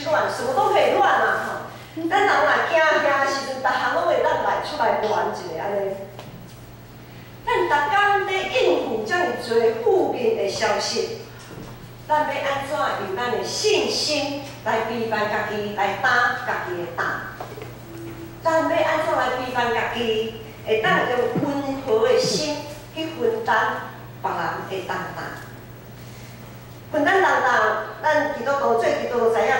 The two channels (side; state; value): both; identical; correlation 1.00